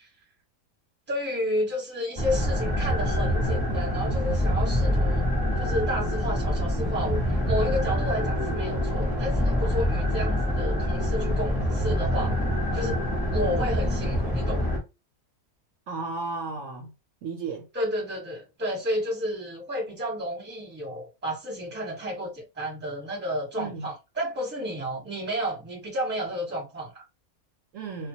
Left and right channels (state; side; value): normal; both; correlation 0.57